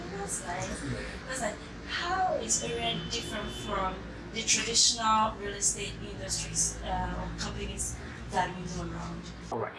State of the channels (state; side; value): identical; both; correlation 1.00